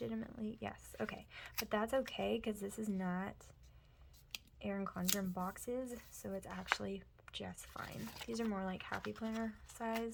Yes. Okay. But that's okay, because this is not Erin Condren boxes, so it's actually just fine. These are more like Happy Planner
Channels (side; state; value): both; identical; correlation 1.00